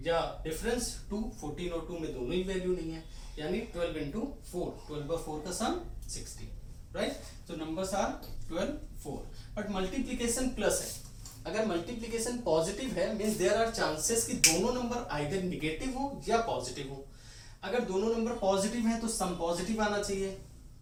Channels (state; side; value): identical; both; correlation 1.00